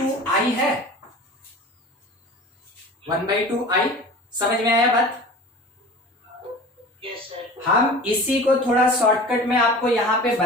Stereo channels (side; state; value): both; normal; correlation 0.38